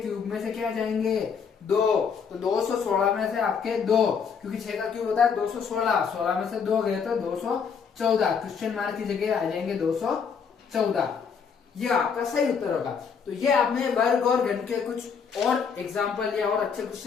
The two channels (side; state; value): right; quieter; 6.4 dB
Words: में से क्या जाएंगे 2, तो 216 में से आपके 2, क्योंकि 6 का क्यूब होता है 216, 16 में से 2 गए तो 214, क्वेश्चन मार्क की जगह आ जाएंगे 214। ये आपका सही उत्तर होगा। तो ये आपने वर्ग और घन के कुछ और एग्जाम्पल या और अच्छे